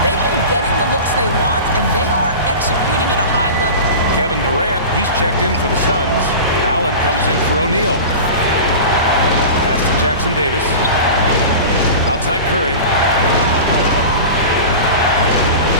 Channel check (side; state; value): both; inverted; correlation -0.32